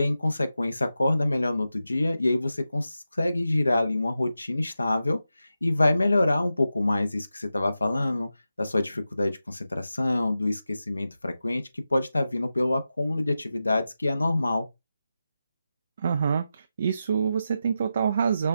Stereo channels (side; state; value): both; inverted; correlation -0.90